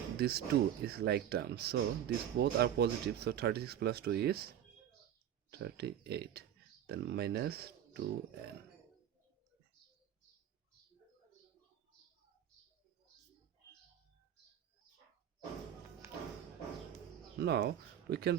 this 2 is like terms, so these both are positive, so 36 plus 2 is 38, then minus 2n. Now we can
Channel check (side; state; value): left; quieter; 10.3 dB